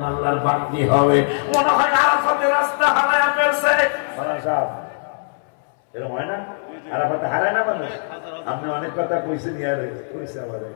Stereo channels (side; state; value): right; silent; 65 dB below the other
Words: আল্লাহর বান্দি হবে। মনে হয় আরাফাতের রাস্তা হারায় ফেলছে। এরকম হয় না? আরাফাতে হারায় না মানুষ? আপনি অনেক কথা কইছেন, ইয়ারে কইছে আবার